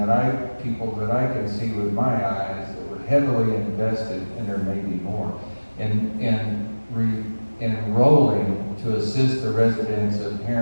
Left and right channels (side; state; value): both; inverted; correlation -1.00